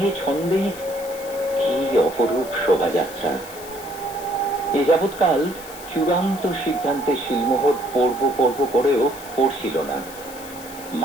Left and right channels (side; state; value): left; noise; hiss, 16 dB below the sound